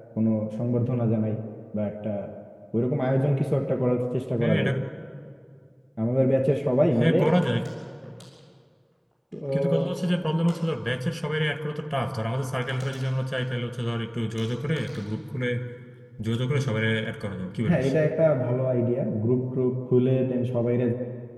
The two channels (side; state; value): both; identical; correlation 1.00